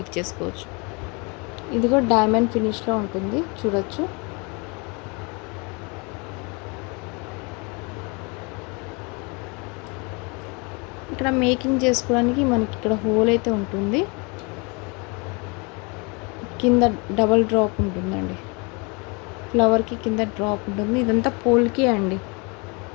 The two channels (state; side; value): quieter; right; 30.6 dB